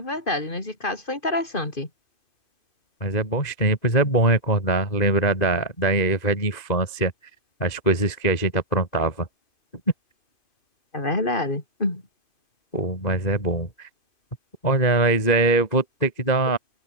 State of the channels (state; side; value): late; right; 2.5 ms